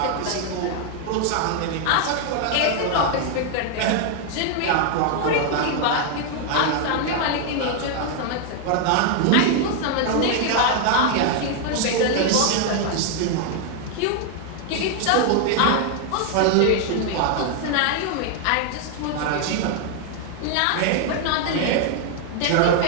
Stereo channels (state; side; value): different; both; correlation 0.00